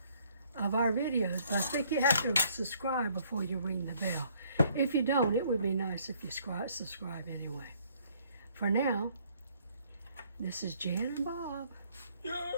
of our videos. But I think you have to subscribe before you ring the bell. If you don't, it would be nice if you subscribe anyway. For now, this is Jan and Bob.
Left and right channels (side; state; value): both; inverted; correlation -0.63